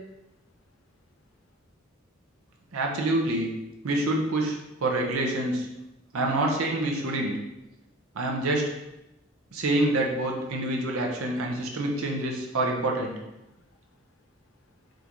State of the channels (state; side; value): normal; both; correlation 0.37